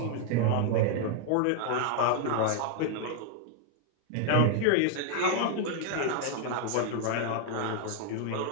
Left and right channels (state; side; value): different; both; correlation 0.00